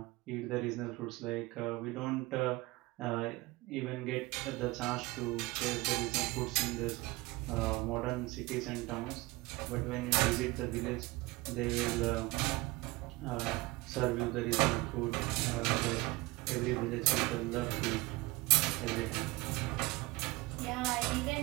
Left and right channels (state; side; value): quieter; left; 21.9 dB